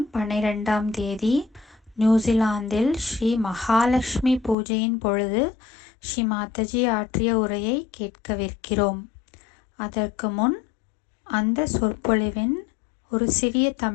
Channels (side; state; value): right; drops out; at 4.5 s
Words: 12ஆம் தேதி நியூசிலாந்தில் ஸ்ரீ மகாலட்சுமி பூஜையின் பொழுது ஸ்ரீ மாதாஜி ஆற்றிய உரையை கேட்கவிருக்கிறோம். அதற்கு முன் அந்த சொற்பொழிவின் ஒரு சிறிய